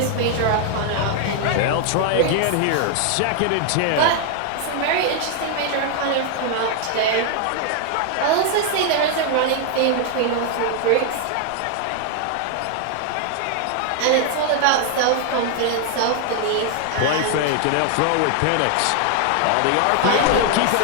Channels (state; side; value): different; both; correlation 0.00